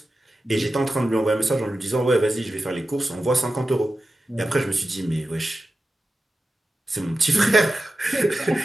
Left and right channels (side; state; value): both; normal; correlation 0.92